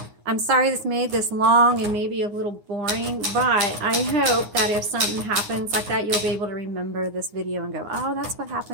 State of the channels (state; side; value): late; left; 9.7 ms